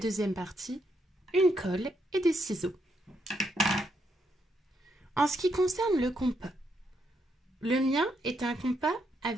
partie, une colle et des ciseaux. En ce qui concerne le compas, le mien est un compas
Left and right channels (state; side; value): normal; both; correlation 0.77